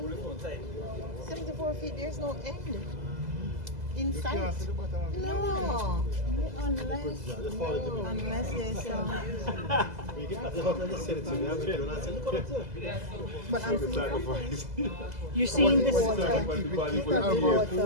74 feet, there's no end. In sight. No. Unless there's some. But I'm you're seeing this water.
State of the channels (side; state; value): left; late; 2.0 ms